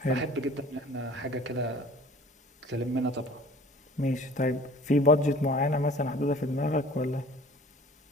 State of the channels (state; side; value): normal; both; correlation 0.48